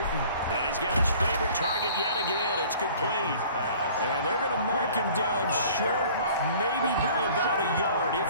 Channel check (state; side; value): inverted; both; correlation -0.50